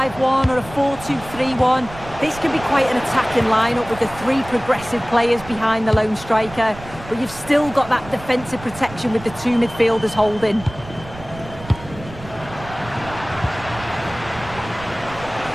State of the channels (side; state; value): right; noise; rumble, 16 dB below the sound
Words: or a 4-2-3-1. This can be quite an attacking lineup with the three progressive players behind the lone striker, but you've still got that defensive protection with the two midfielders holding.